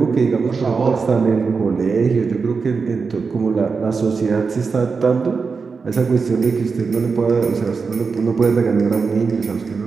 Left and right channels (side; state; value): left; quieter; 5.0 dB